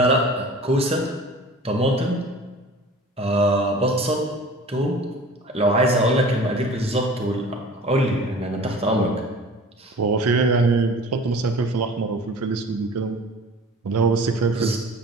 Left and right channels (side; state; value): both; normal; correlation 0.42